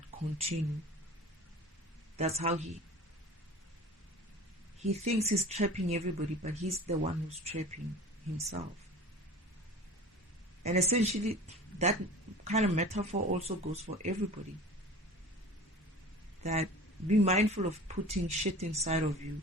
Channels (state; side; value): normal; both; correlation 0.39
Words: continue. That's how he thinks he's trapping everybody, but he's the one who's trapping himself. And essentially that kind of metaphor also goes for everybody. That be mindful of putting shit inside of you